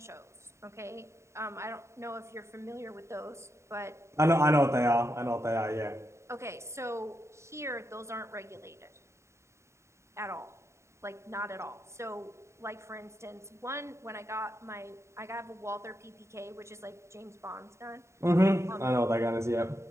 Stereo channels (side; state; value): left; late; 0.14 ms